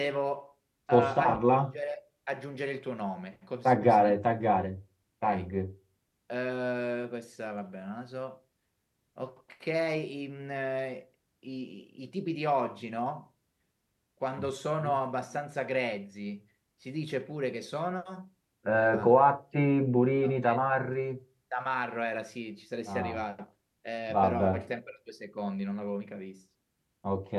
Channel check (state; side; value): identical; both; correlation 1.00